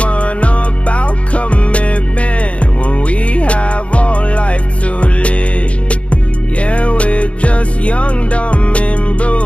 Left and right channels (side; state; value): right; late; 0.062 ms